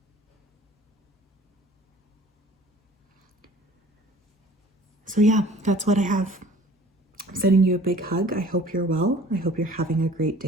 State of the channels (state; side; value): normal; both; correlation 0.49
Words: So yeah, that's what I have. I'm sending you a big hug. I hope you're well. I hope you're having a great